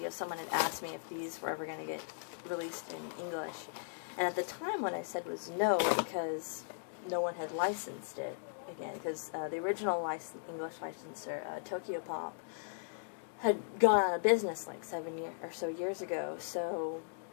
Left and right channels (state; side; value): silent; right; digital silence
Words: someone had asked me if these were ever going to get released in English, and at the time what I said was no, because no one had licensed it again, because the original English licensor, Tokyo Pop, had gone out of business like 7 or so years ago, so